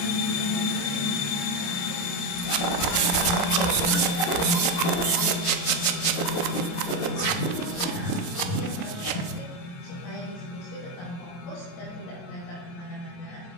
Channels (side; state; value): right; late; 28 ms